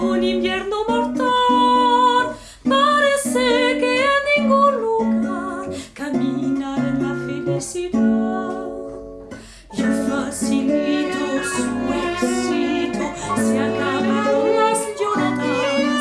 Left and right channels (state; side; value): identical; both; correlation 1.00